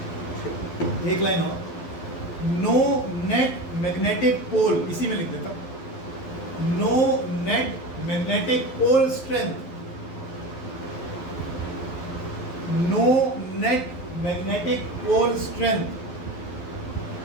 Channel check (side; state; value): right; late; 12 ms